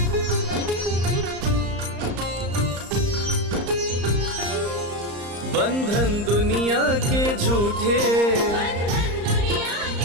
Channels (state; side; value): late; left; 34 ms